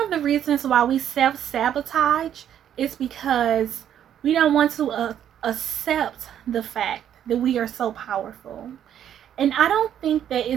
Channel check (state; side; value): quieter; left; 9.9 dB